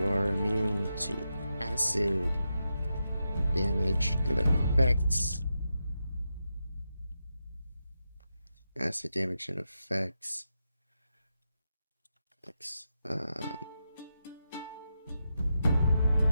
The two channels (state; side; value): inverted; both; correlation -0.87